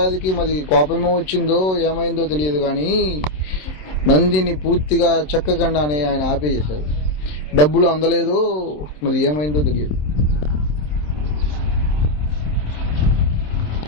మరి కోపమో వచ్చిందో ఏమైందో తెలియదు, కానీ నందిని పూర్తిగా చెక్కకుండానే ఆయన ఆపేసేశారు. డబ్బులు అందలేదో మరి ఏమైందో తెలియదు.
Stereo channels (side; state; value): right; late; 27 ms